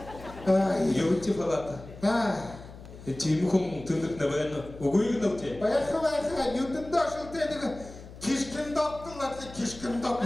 Юрти фалата. Тимхум түндік набайны угуйгын алте. Байха, ютын дошыл тедігі кишким доктыл атлы кишким док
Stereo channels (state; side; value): noise; left; hum, 16 dB below the sound